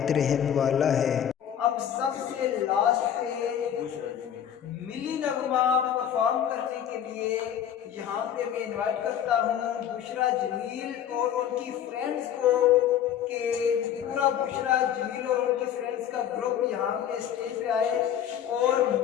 रहम वाला है। अब सबसे लास्ट पे मिली नगमा परफॉर्म करने के लिए यहाँ पे मैं इनवाइट करता हूँ बुशरा जमील और उनकी फ्रेंड्स को कि पूरा बुशरा जमील और उनके फ्रेंड्स का ग्रुप यहाँ पे स्टेज पे आए और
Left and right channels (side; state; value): right; quieter; 9.7 dB